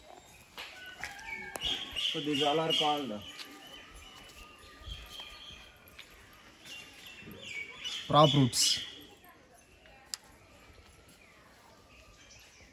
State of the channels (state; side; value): identical; both; correlation 1.00